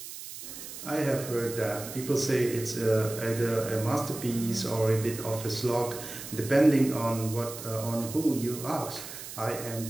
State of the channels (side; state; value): right; noise; hiss, 11 dB below the sound